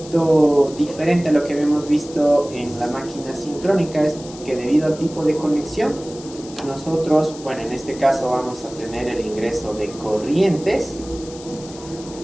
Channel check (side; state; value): left; noise; hiss, 18 dB below the sound